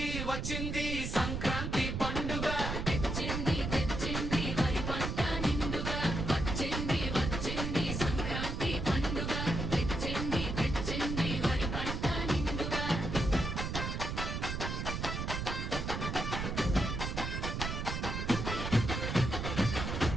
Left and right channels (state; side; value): noise; right; rumble, 3 dB below the sound